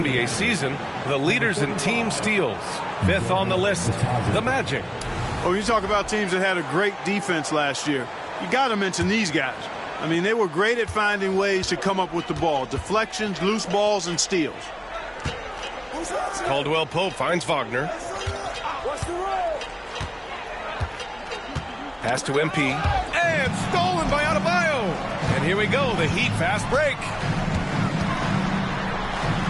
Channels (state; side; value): identical; both; correlation 1.00